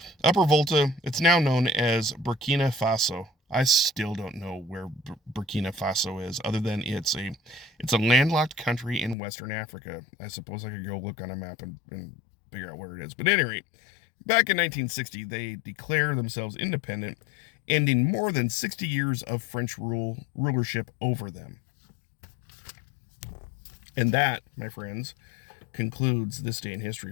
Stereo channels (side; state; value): right; drops out; at 9.2 s